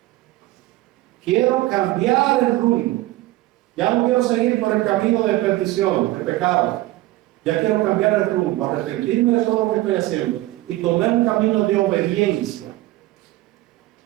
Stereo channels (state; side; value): quieter; left; 17.6 dB